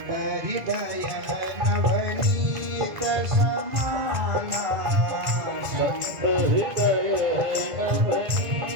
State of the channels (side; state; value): left; late; 2.0 ms